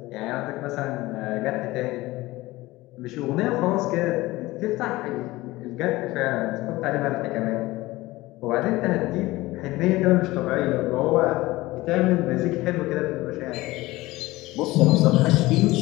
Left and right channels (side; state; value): right; quieter; 19.2 dB